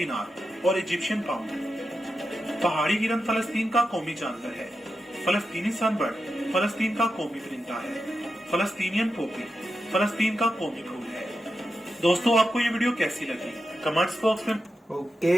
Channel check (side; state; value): both; normal; correlation 0.89